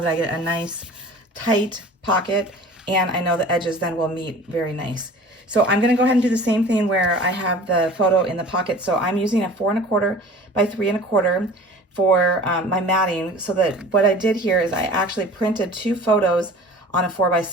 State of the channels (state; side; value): normal; both; correlation 0.43